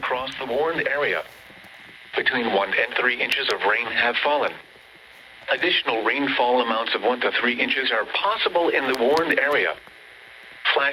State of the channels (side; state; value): both; identical; correlation 1.00